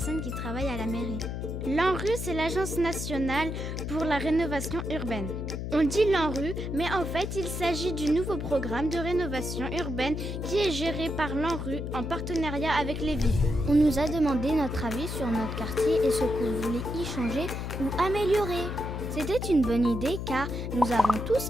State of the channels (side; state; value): left; noise; hum, 4 dB below the sound